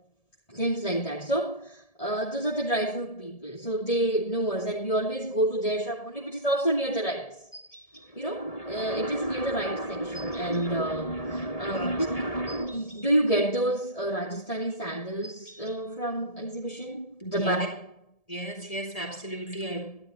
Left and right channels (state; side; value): late; right; 1.7 ms